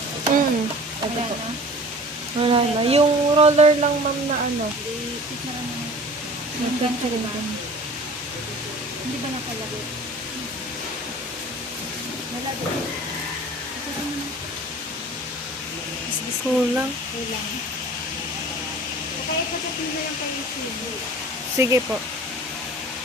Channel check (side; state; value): both; normal; correlation 0.43